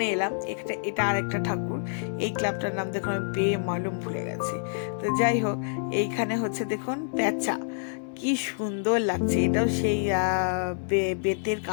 এলাম, এটা আর একটা ঠাকুর। এই ক্লাবটার নাম দেখুন, আমি মালুম ভুলে গেছি। তো যাই হোক, এইখানে হচ্ছে দেখুন প্যাঁচা, কি সুন্দর লাগছে। এটাও সেই বেতের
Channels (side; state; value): right; silent; 60 dB below the other